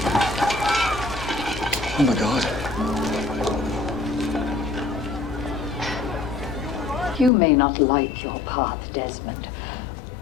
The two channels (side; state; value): right; drops out; at 7.3 s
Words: Oh my God. You may not like your path, Desmond,